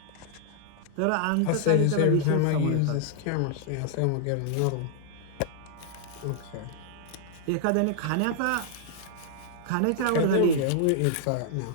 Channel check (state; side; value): different; both; correlation 0.00